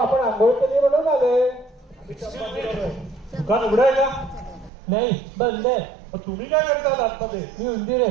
आंघोळ केली म्हणून आले. दुकान उघडाय का? नाही, बंद आहे. तुम्ही काय करता आतमध्ये? मी उंदीर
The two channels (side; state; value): left; drops out; at 4.7 s